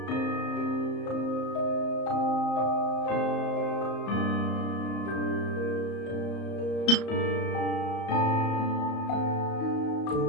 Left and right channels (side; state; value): right; late; 34 ms